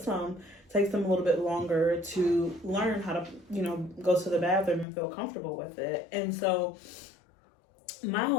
some, takes them a little bit longer to learn how to, go to the bathroom and feel comfortable with it. And so my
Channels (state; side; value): drops out; right; at 4.9 s